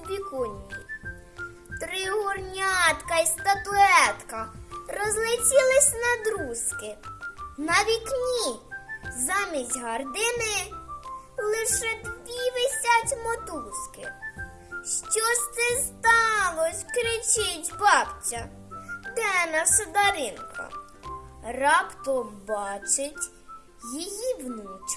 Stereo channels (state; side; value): identical; both; correlation 1.00